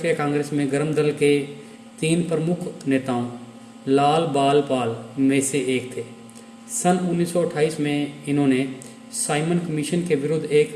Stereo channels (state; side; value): identical; both; correlation 1.00